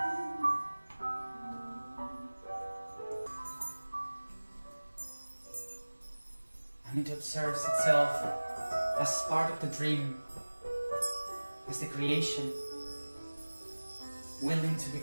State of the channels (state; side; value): inverted; both; correlation -1.00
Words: and it observes itself as part of the dream, as the creation, willing to